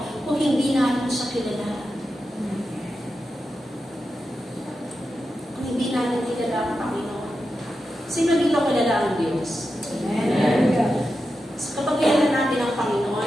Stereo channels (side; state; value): both; normal; correlation 0.90